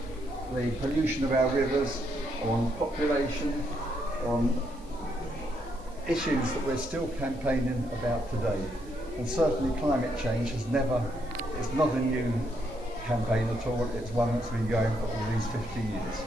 pollution of our rivers, on population, on issues that we're still campaigning about today. And certainly climate change is not a new campaign at all, it's one that's been going for all these 50 years.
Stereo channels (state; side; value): noise; right; hiss, 27 dB below the sound